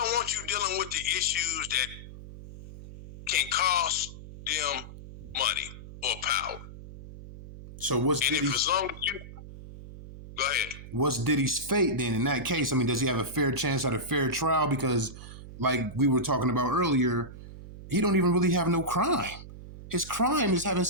want you dealing with the issues that can cost them money or power. So what's and Diddy's, if as long as you go ahead, what's Diddy's fate then in that case? I mean, does he have a fair chance at a fair trial? Because like we were talking about earlier, he don't even really have no crime. His crime is having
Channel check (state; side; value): noise; right; hum, 14 dB below the sound